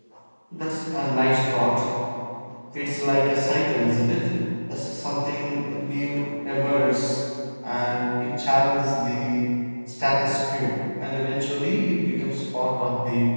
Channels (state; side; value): inverted; both; correlation -1.00